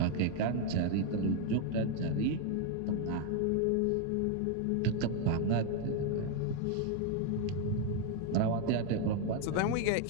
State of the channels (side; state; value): both; different; correlation 0.01